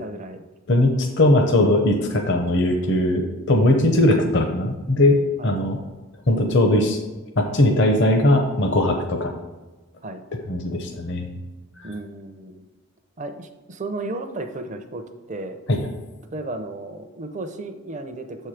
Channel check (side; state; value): both; normal; correlation 0.42